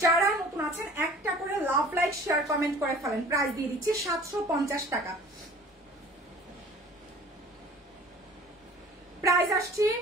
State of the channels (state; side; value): normal; both; correlation 0.47